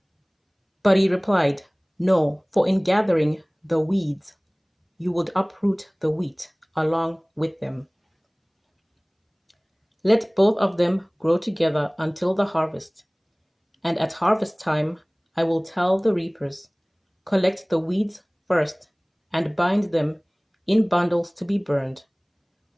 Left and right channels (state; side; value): identical; both; correlation 1.00